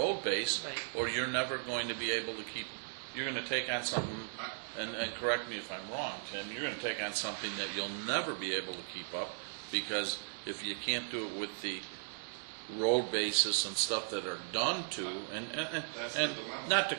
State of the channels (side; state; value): left; silent; digital silence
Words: base, Right. or you're never going to be able to keep, you're gonna take on something, and correct me if I'm wrong, Tim, you're gonna take on something that you'll never be able to keep up, because if you can't do it with the road basis and stuff that are done to, That's the and dilemma. not to